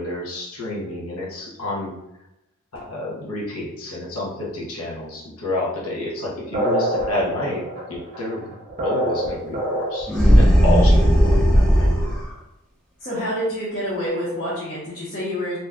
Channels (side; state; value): both; normal; correlation 0.75